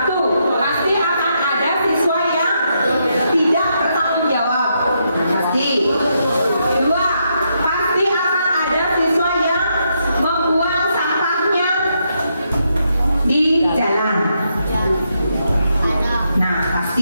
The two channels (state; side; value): inverted; both; correlation -0.79